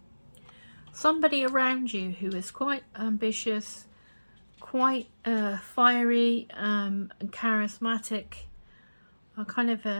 somebody around you who is quite ambitious, quite fiery and charismatic, a kind of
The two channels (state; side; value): inverted; both; correlation -1.00